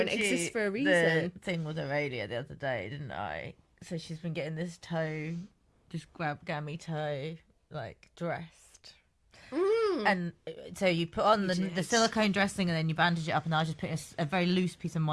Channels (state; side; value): identical; both; correlation 1.00